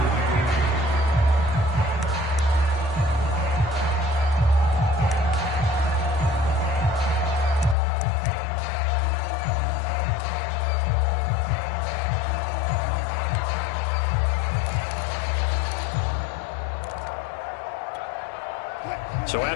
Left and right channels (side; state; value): right; drops out; at 7.8 s